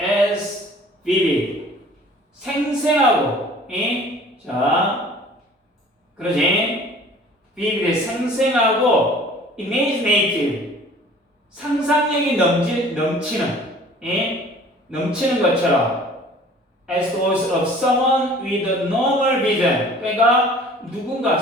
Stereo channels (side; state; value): both; normal; correlation 0.49